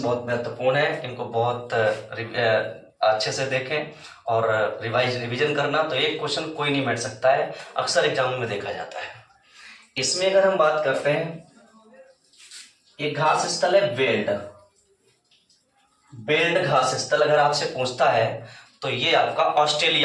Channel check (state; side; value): identical; both; correlation 1.00